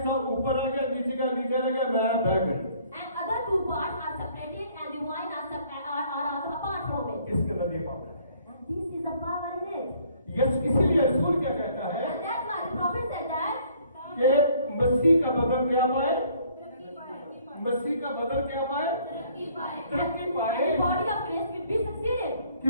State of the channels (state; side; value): inverted; both; correlation -0.61